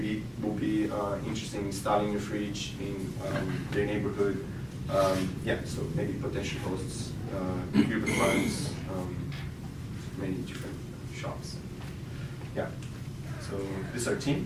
will be interested in installing a fridge in their neighborhood. Yeah, so maybe potential hosts, urban funds, many different shops. Yeah, so this is our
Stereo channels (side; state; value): both; identical; correlation 1.00